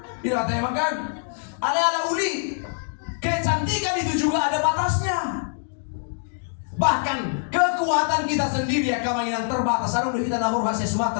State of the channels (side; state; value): right; silent; 62 dB below the other